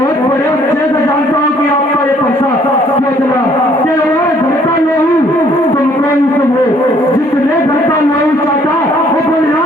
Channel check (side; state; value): both; normal; correlation 0.62